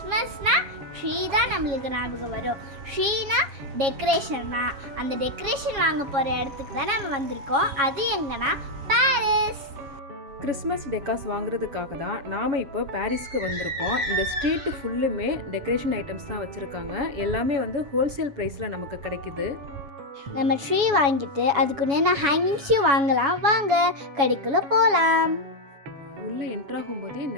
ட்ரீ தான் நம்மளுக்கு ஞாபகம் வரும். ட்ரீனா டெக்கரேஷன் தான். அந்த டெக்கரேஷன் வாங்க போகிற இடத்துக்கு தான் நம்ம வந்திருக்கோம். அது எங்கன்னா பாரிஸ். கிறிஸ்மஸ் டெக்காஸ் வாங்குறதுக்காக தான் நாம் இப்போ பாரிஸ்க்கு வந்திருக்கோம். இந்த ஸ்ட்ரீட்டு ஃபுல்லுமே டெக்கரேஷன் ஐட்டம்ஸ் தான் வச்சுருக்காங்க. எல்லாமே வந்து ஹோல்சேல் ப்ரைஸில் நமக்கு கிடைக்குது. நம்ம ட்ரீ வாங்கிட்டு அதுக்குன்னு ஹேங்கிங்ஸையும் வாங்கலாம். வாங்க கடைக்குள்ளே போகலாம். உள்ளே என்ட்ராகும் போதே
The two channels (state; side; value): late; left; 7.2 ms